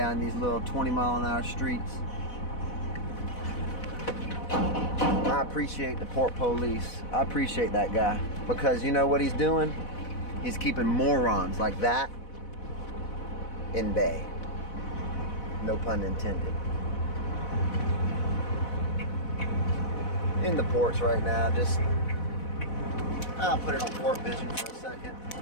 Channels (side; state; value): right; late; 4.1 ms